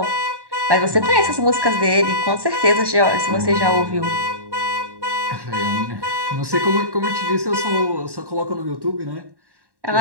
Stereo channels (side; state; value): left; late; 1.1 ms